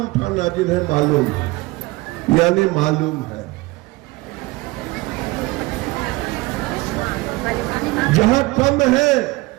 उठाना जिन्हें मालूम, यानी मालूम है। जहां कम है,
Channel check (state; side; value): quieter; left; 21.9 dB